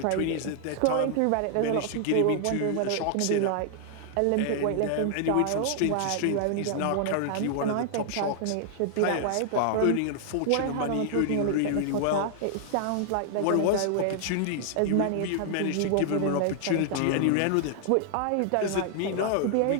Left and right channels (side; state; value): both; different; correlation -0.01